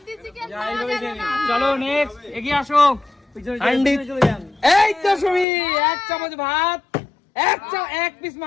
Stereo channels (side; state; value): right; drops out; at 5.5 s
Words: চিকেন যা, পাওয়া এইভাবে যাবে খেয়ে না। নিন। চলো নেক্সট, এগিয়ে আসো। হান্ডি। চলে যান। এই তো সুমি, 1 চামচ ভাত, 1 পিস